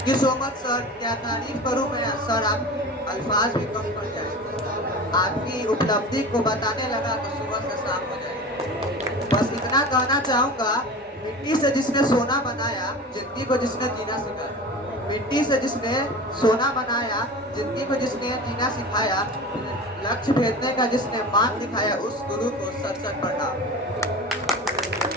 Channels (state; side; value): normal; both; correlation 0.33